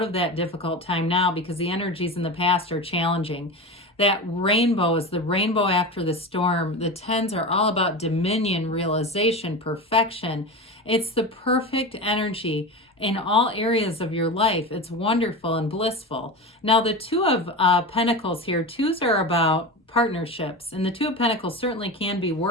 of that difficult time now because the energies in the past are challenging. That rainbow is the rainbow after the storm. The tens are all about dominion, realization, perfection. It's the perfect energy in all areas of your life. It's wonderful and blissful. Now, the two of Pentacles here, twos are about partnerships, and the two of Pentacles certainly can be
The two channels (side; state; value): both; normal; correlation 0.25